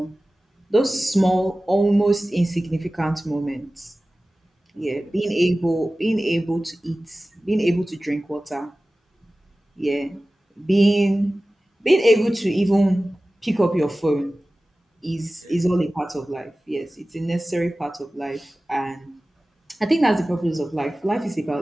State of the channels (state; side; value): normal; both; correlation 0.97